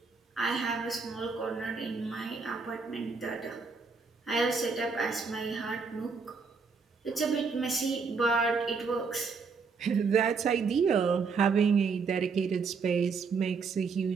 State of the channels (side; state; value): left; quieter; 5.0 dB